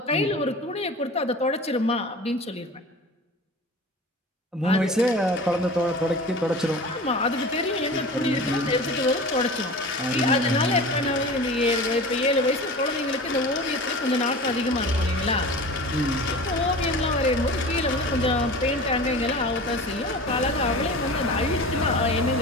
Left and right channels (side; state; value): both; normal; correlation 0.36